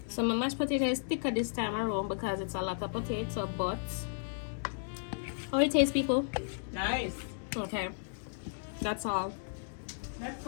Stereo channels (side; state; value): right; silent; digital silence